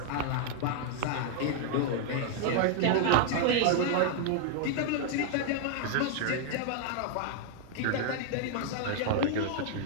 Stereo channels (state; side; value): different; both; correlation 0.00